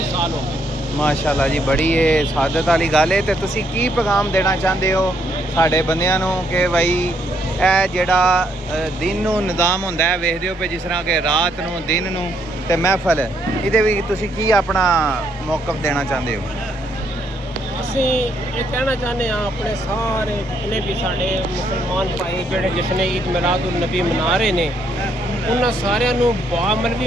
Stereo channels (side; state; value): both; normal; correlation 0.73